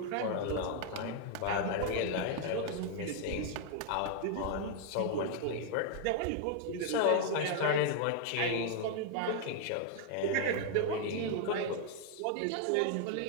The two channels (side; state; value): both; different; correlation 0.00